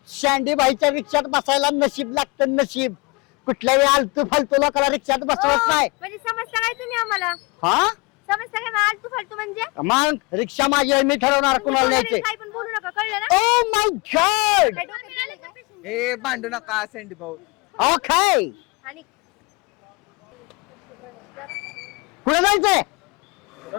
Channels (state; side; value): quieter; right; 27.5 dB